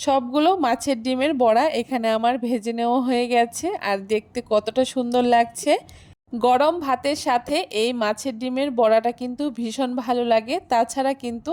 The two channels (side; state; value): both; identical; correlation 1.00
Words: মাছের ডিমের বড়া এখানে আমার ভেজে নেওয়া হয়ে গেছে। আর দেখতে কতটা সুন্দর লাগছে। গরম ভাতের সাথে এই মাছের ডিমের বড়াটা কিন্তু ভীষণ ভালো লাগে। তাছাড়া কিন্তু